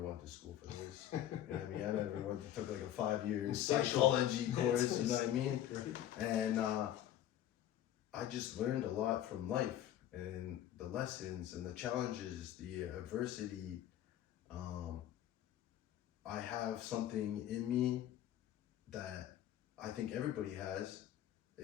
went to school for this. You know what I mean? I never took like a 5-year psychology course, you know what I mean? Right. And I just learned a lot from life, and the lessons and the challenges, the adversity. I have something in me that I think everybody has.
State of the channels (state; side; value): quieter; right; 11.8 dB